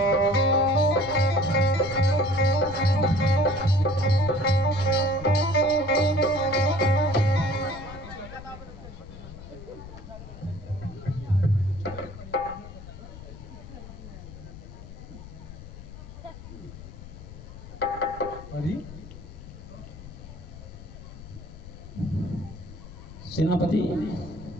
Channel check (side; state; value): left; noise; rumble, 14 dB below the sound